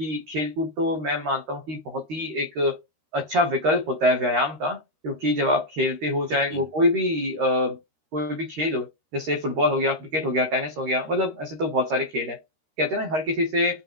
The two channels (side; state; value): left; late; 13 ms